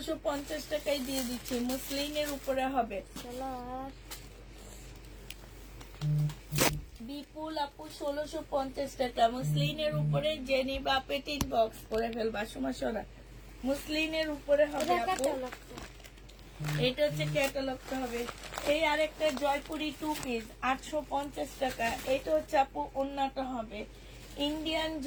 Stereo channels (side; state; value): both; identical; correlation 1.00